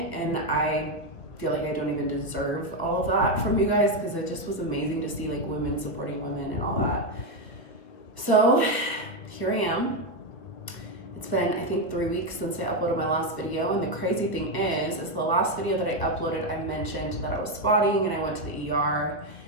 and I feel like I don't even deserve all of that from you guys because it just was amazing to see like women supporting women and all that. So here I am. It's been, I think, 3 weeks since I uploaded my last video, and the crazy thing is the last video that I uploaded, I mentioned that I was spotting and I went to the ER,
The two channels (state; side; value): late; right; 1.3 ms